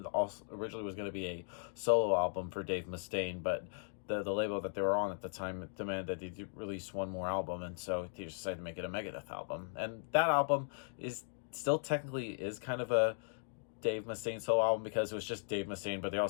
also originally was going to be a solo album for Dave Mustaine, but the label that they were on at the time demanded that they release one more album, and so they decided to make it a Megadeth album. And that album is still technically is kind of a Dave Mustaine solo album because it was just Dave Mustaine, but they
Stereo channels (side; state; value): right; silent; digital silence